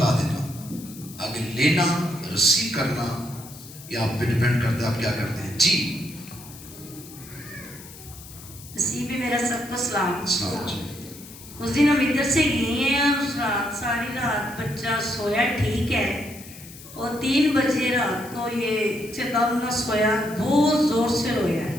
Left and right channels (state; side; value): noise; left; hiss, 17 dB below the sound